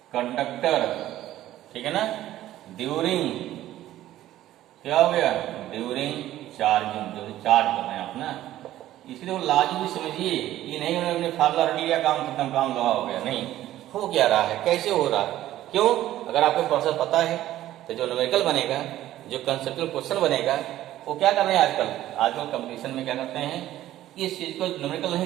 conductor, ठीक है ना, ड्यूरिंग क्या हो गया, ड्यूरिंग चार्जिंग, जो चार्ज कर रहे हैं आप ना। इसलिए वो लाजिम भी समझिए, ये नहीं उन्होंने फार्मूला रट लिया, काम खत्म, काम लगा हो गया, नहीं। हो क्या रहा है, कैसे हो रहा है, क्यों, अगर आपको प्रोसेस पता है तो जो न्यूमेरिकल बनेगा, जो कंसेप्चुअल क्वेश्चन बनेगा, वो क्या कर रहे हैं आजकल कंपटीशन में क्या करते हैं, इस चीज को न्यूमेरिकल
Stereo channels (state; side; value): quieter; left; 13.8 dB